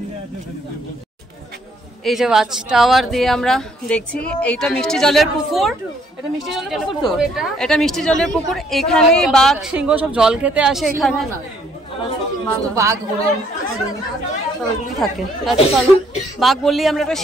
এই যে ওয়াচ টাওয়ার দিয়ে আমরা দেখছি, এইটা মিষ্টি জলের পুকুর, এটা মিষ্টি জলের পুকুর তো, এটা মিষ্টি জলের পুকুর। এখানেই বাঘ সিংহ সব জল খেতে আসে, এখানে বাঘ থাকে। বাঘ বললেই আমরা একটা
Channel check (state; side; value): normal; both; correlation 0.66